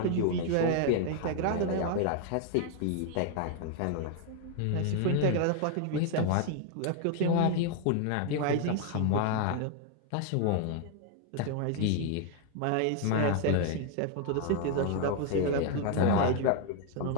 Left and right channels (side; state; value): both; different; correlation 0.01